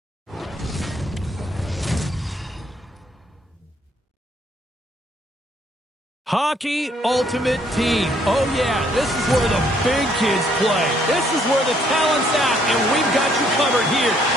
Hockey Ultimate Team. Oh, yeah, this is where the big kids play. This is where the talent's at, and we've got you covered here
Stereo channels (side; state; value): both; normal; correlation 0.67